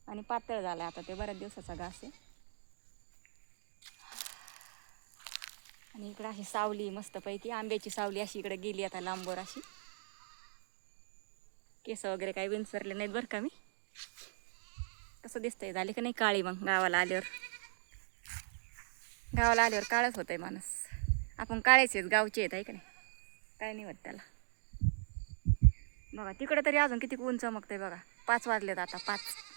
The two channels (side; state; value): left; silent; digital silence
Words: आणि पातळ झालं आता, ते बऱ्याच दिवसाचा घास आहे. आणि इकडं अशी सावली मस्तपैकी, आंब्याची सावली अशी इकडे गेली आता लांबवर अशी. केस वगैरे काही विंचरले नाहीत बरं का मी. कसं दिसतंय, झाले का नाही काळी? मग गावाला आल्यावर काळच होतंय माणूस. आपण काळेच आहेत, गावचे आहेत आहे का नाही, काय नाही होत त्याला. बघा तिकडं तरी अजून किती ऊन चमकतंय बघा. 5 वाजलेत आता 5.